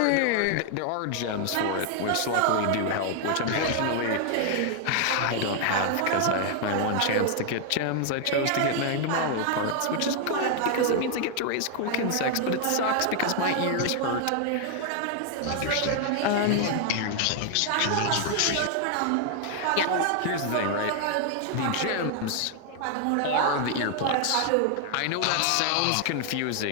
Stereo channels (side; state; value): both; different; correlation 0.00